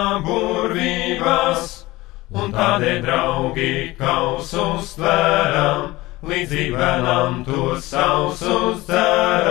burvībās, un tādēļ, draugi, kausus tvēram, līdzīgi bērnam tos sausus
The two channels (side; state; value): right; quieter; 19.5 dB